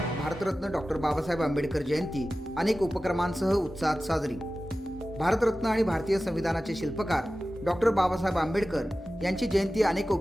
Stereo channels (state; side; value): normal; both; correlation 0.95